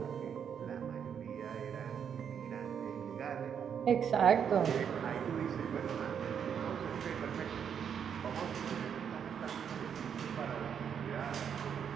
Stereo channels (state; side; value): quieter; left; 7.8 dB